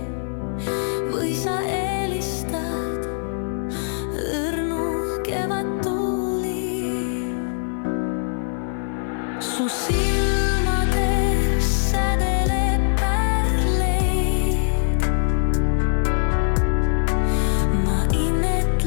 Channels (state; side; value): silent; right; 55 dB below the other